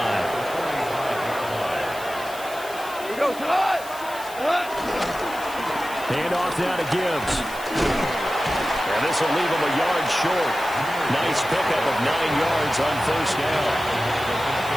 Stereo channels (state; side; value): noise; left; hiss, 16 dB below the sound